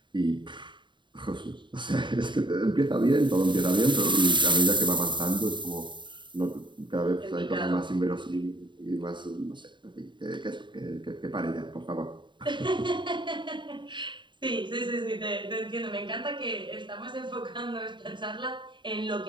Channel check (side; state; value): left; late; 0.23 ms